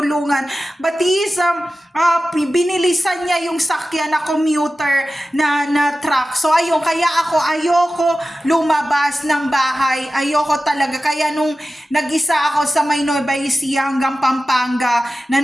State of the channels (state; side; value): normal; both; correlation 0.94